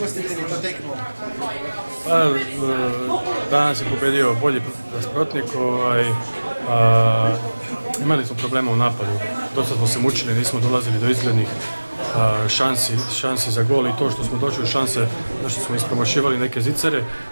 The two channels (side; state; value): both; inverted; correlation -1.00